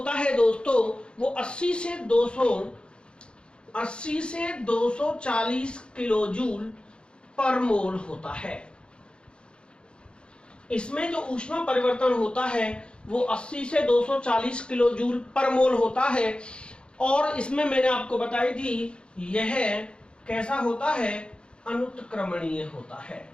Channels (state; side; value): late; right; 0.054 ms